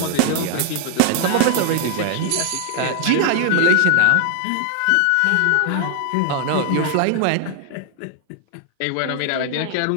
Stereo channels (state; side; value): different; both; correlation 0.00